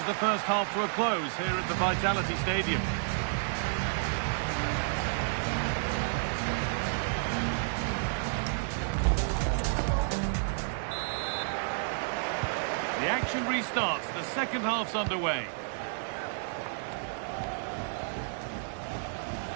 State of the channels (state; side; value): silent; left; digital silence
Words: the first half to a close here at the Vitality Stadium. The action restarts, the second half's underway.